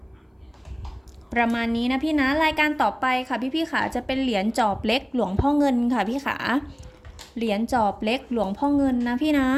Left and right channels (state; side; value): identical; both; correlation 1.00